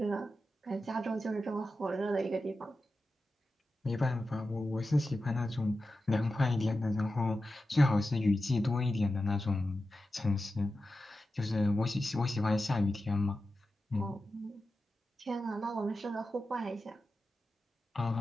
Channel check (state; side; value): normal; both; correlation 0.92